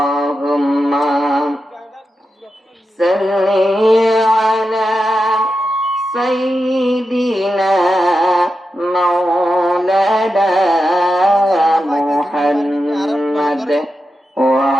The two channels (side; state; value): both; normal; correlation 0.89